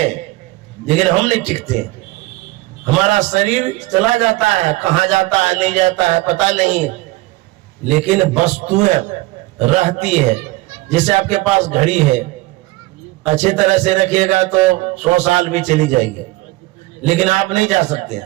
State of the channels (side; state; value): left; quieter; 20.2 dB